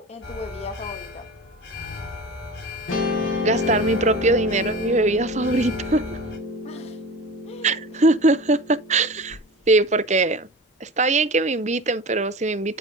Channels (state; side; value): normal; both; correlation 0.34